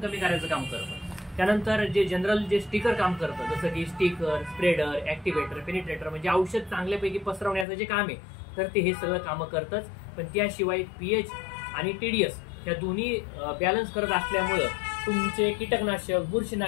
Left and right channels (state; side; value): drops out; right; at 7.7 s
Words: करायचं काम करतं. त्यानंतर जे जनरल जे स्टिकर काम करतं, जसं की स्टिकर, स्प्रेडर, ऍक्टिव्हेटर, पेनिट्रेटर, म्हणजे औषध चांगल्यापैकी पसरवण्याचं जे काम आहे, तर ते हे सगळं कामं करतच. पण त्याशिवाय पीएच आणि टीडीएस या दोन्ही बॅलन्स करत असल्यामुळं तुमचे कीटकनाशक,